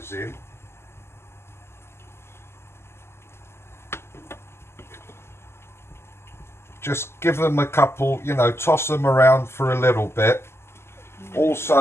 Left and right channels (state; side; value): late; right; 0.12 ms